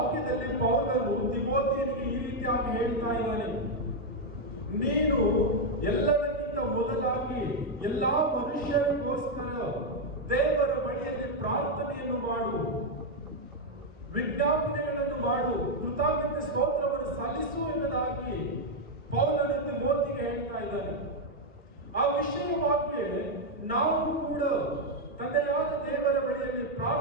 ಪೌಲನು ತಿಮೋಥಿಯನಿಗೆ ಈ ರೀತಿಯಾಗಿ ಹೇಳ್ತಾ ಇದ್ದಾನೆ, ನೀನು ಎಲ್ಲದಕ್ಕಿಂತ ಮೊದಲಾಗಿ ಎಲ್ಲಾ ಮನುಷ್ಯರಿಗೋಸ್ಕರ ದೇವರ ಬಳಿಯಲ್ಲಿ ಪ್ರಾರ್ಥನೆಯನ್ನು ಮಾಡು, ವಿಜ್ಞಾಪನೆಗಳನ್ನು ಮಾಡು, ಕೃತಜ್ಞತೆ ಸ್ತೋತ್ರವನ್ನು ಸಲ್ಲಿಸು ಎಂಬುದಾಗಿ ಪೌಲನು ತಿಮೋಥಿಗೆ ಹೇಳ್ತಾ ಇದ್ದಾನೆ. ಆ ವಿಷಯವಾಗಿ ನಾವು ಕೂಡ ತಂದೆಯಾದ ದೇವರ ಬಳಿಯಲ್ಲಿ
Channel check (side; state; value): both; normal; correlation 0.01